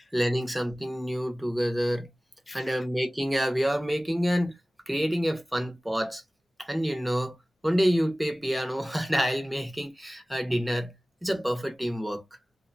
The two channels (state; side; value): normal; both; correlation 0.98